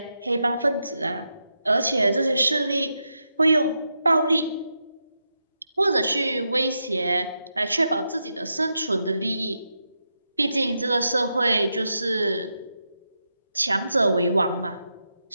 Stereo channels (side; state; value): both; inverted; correlation -0.86